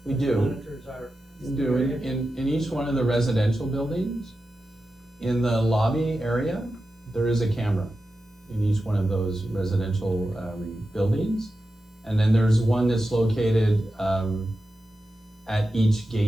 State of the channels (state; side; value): normal; both; correlation 0.91